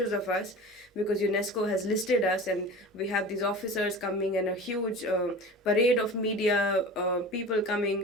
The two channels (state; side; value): normal; both; correlation 0.36